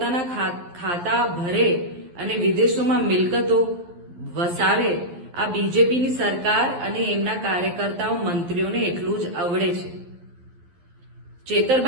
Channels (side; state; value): left; late; 11 ms